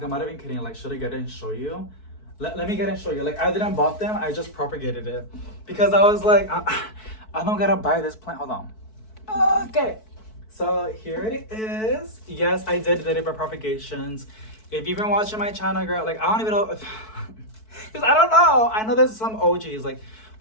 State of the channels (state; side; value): late; right; 4.6 ms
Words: I'm not even kidding. Like, should I get it and show you? Let me get it and show you. Like I didn't bought them. I just propagated it because I was like, I don't gotta buy this plant. Hold on. Okay. So here it is. Yes, I did it by propagations. If you've been watching my channel, girl, like I don't even know if, because I don't know. I know there's some OGs like,